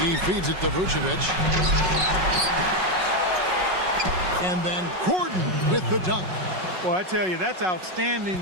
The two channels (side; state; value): left; late; 5.4 ms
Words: He feeds it to Vucevic. And then Gordon with the dunk. Well, I tell you, that's outstanding